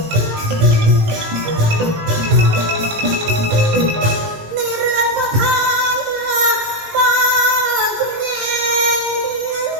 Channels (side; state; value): left; late; 18 ms